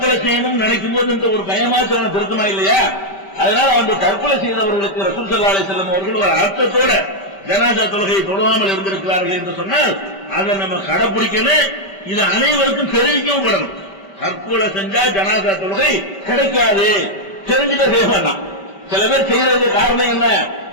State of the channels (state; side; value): late; right; 5.1 ms